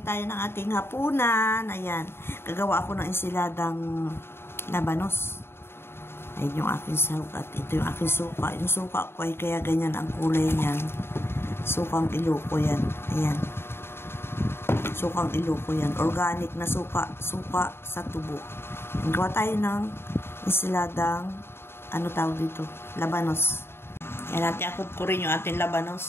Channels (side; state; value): right; late; 0.11 ms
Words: tayo ng ating hapunan. Ayan, gagawa ako ng ensiladang labanos. Ayan yung aking suka at ito yung aking suka. Yung suka ko ay kaya ganyan ang kulay niyan. Sukang Iloko yan. Ayan. Sukang Iloko yan. Organic na suka. Suka sa tubo. Gawa tayo ng ensiladang, ano tawag dito? Labanos. Ayan, natin akot ko rin yung ating